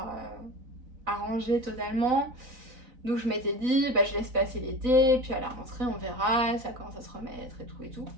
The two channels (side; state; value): left; late; 4.0 ms